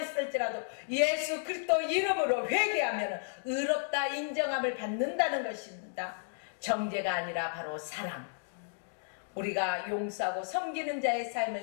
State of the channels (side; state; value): right; silent; digital silence